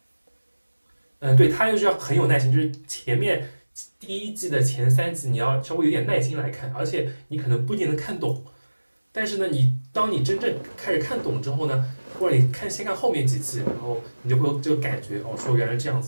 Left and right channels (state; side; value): inverted; both; correlation -1.00